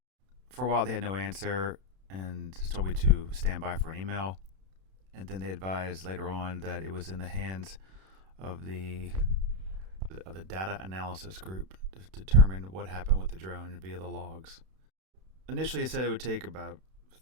For a while they had no answer and just told me to stand by for an email, and then they advised later on that it was in the hands of the data analysis group to determine what happened with the drone via the logs. Initially it said it would take about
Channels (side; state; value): left; late; 32 ms